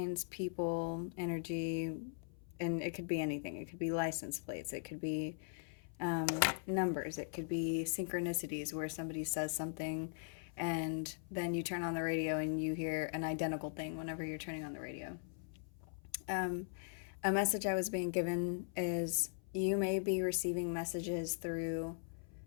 people, energy, and it could be anything. It could be license plates, it could be numbers, it could be synchronicities where somebody says something and then you turn on the radio and you hear an identical thing whenever you're turning on the radio. A message I was being given is you may be receiving messages through,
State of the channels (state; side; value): silent; right; 51 dB below the other